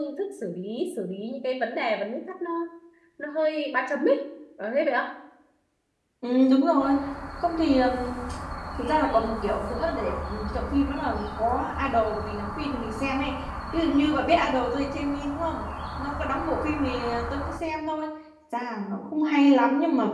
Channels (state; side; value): identical; both; correlation 1.00